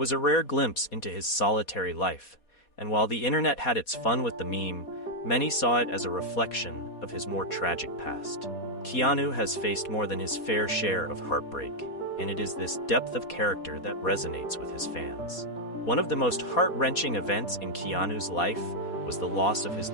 a rare glimpse into his solitary life, and while the internet had its fun with the meme, many saw it as a reflection of his more tragic past. Keanu has faced more than his fair share of heartbreak, and it is this depth of character that resonates with his fans. One of the most heart-wrenching events in Keanu's life was the loss of his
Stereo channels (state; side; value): late; right; 4.2 ms